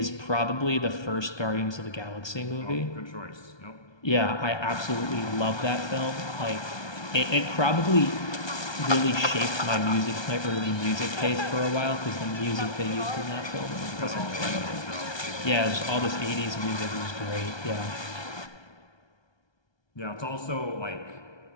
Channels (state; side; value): late; right; 1.2 ms